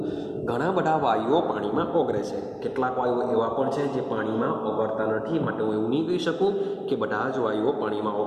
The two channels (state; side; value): identical; both; correlation 1.00